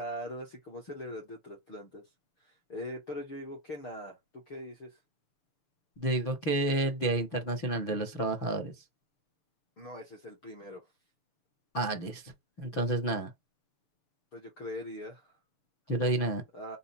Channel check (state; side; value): late; right; 6.8 ms